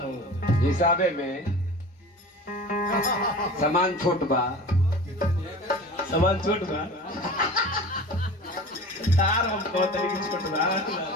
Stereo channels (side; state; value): both; normal; correlation 0.37